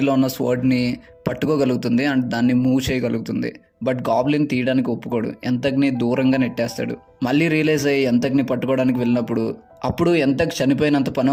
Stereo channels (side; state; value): both; identical; correlation 1.00